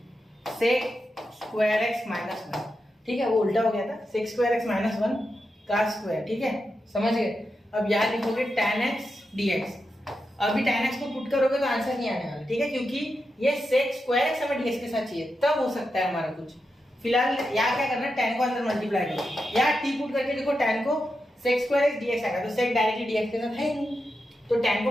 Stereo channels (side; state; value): both; normal; correlation 0.88